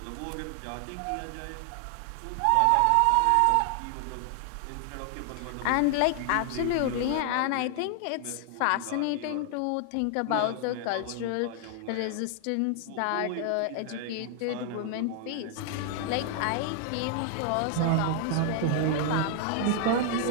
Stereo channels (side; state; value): both; different; correlation 0.00